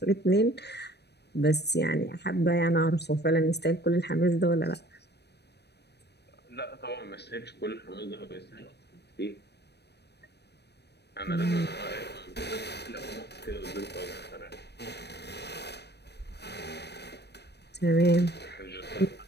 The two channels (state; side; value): late; right; 0.49 ms